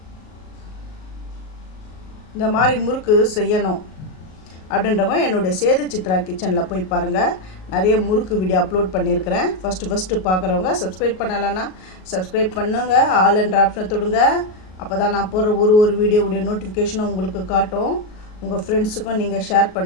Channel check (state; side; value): late; right; 38 ms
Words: இந்த மாதிரி முறுக்கு செய்யணும் அப்படின்றவங்க என்னுடைய சேது சித்ரா கிச்சனில் போய் பாருங்கள். நிறைய முறுக்கு வீடியோ அப்லோட் பண்ணியிருக்கிறேன். ஃபஸ்ட்டு பார்க்குறவங்க சப்ஸ்கிரைப் பண்ணலைன்னா சப்ஸ்கிரைப் பண்ணுங்கள். ஆல் என்ற ஆப்ஷனை தொடுங்க. அப்போ தான் நான் போடுற ஒரு வீடியோவுடைய நோட்டிஃபிகேஷனும் உங்களுக்கு காட்டும். உங்கள் ஃப்ரெண்ட்ஸுக்கும் நீங்கள் ஷேர்